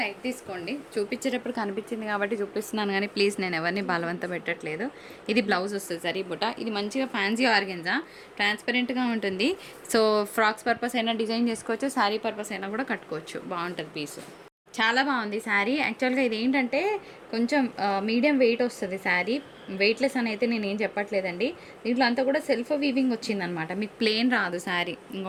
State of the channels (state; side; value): identical; both; correlation 1.00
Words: లైట్ తీసుకోండి, చూపించేటప్పుడు కనిపించింది కాబట్టి చూపిస్తున్నాను, కానీ ప్లీజ్ నేను ఎవరిని బలవంత పెట్టట్లేదు. ఇది బ్లౌజ్ వస్తుంది సరీ బుట్ట. ఇది మంచిగా ఫ్యాన్సీ ఆర్గెన్జా, ట్రాన్స్పరెంట్గా ఉంటుంది. సో ఫ్రాక్స్ పర్పస్ అయినా డిజైన్ చేసుకోవచ్చు, శారీ పర్పస్ అయినా కూడా కట్టుకోవచ్చు, బాగుంటుంది పీసు. చాలా బాగుంది శారీ. యాక్చువల్గా ఇది ఏంటంటే కొంచెం మీడియం వెయిట్ వస్తుంది శారీ, వెయిట్లెస్ అని అయితే నేను ఏం చెప్పట్లేదండి. దీంట్లో అంతా కూడా సెల్ఫ్ వీవింగ్ వచ్చిందనమాట, మీకు ప్లెయిన్ రాదు శారీ.